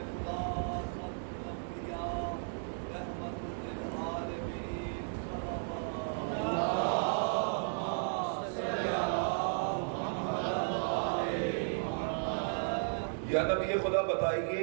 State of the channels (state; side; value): silent; left; digital silence